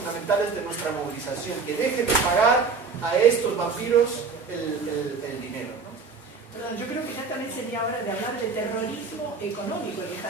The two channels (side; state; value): left; quieter; 4.8 dB